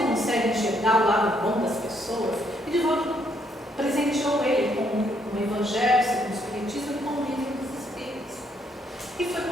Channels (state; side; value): normal; both; correlation 0.72